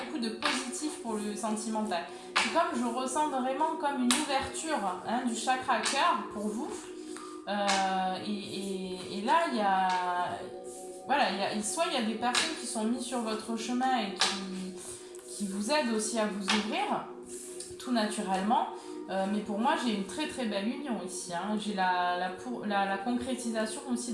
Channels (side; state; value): both; identical; correlation 1.00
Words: de positifs pour le sentimental. C'est comme, je ressens vraiment comme une ouverture du chakra cœur pour vous. Et là, il y a... Voilà, soit il y a des personnes qui sont mises sur votre chemin et qui vous aident aussi à vous ouvrir, tout naturellement. Mais pour moi, j'ai une très très belle union ici. J'ai la concrétisation aussi